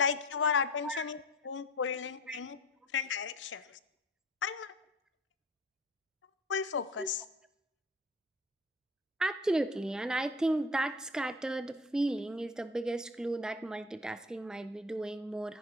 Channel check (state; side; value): normal; both; correlation 0.40